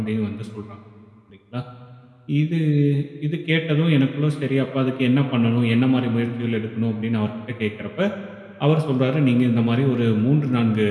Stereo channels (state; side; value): identical; both; correlation 1.00